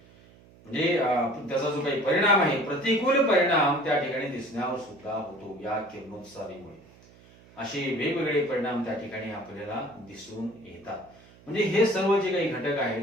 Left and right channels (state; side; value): noise; right; hum, 25 dB below the sound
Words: म्हणजे त्याचा जो काही परिणाम आहे, प्रतिकूल परिणाम त्या ठिकाणी दिसण्यावर सुद्धा होतो या किरणोत्सारीमुळे. असे वेगवेगळे परिणाम त्या ठिकाणी आपल्याला दिसून येतात. म्हणजे हे सर्व जे काही घटक